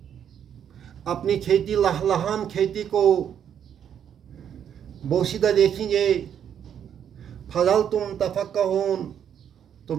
اپنی کھیتی لہلہان کھیتی کو بوسیدہ دیکھیں گے، فضل تم تفقہون،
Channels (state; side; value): quieter; left; 8.9 dB